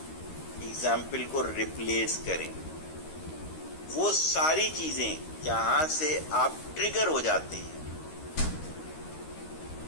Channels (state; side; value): late; right; 13 ms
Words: ایگزامپل کو ریپلیس کریں. وہ ساری چیزیں جہاں سے آپ ٹریگر ہو جاتے ہیں،